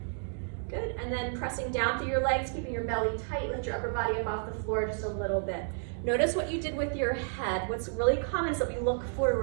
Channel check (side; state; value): left; silent; 57 dB below the other